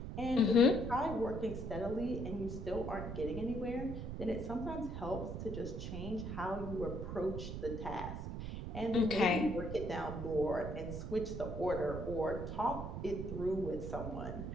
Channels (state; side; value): noise; right; rumble, 6 dB below the sound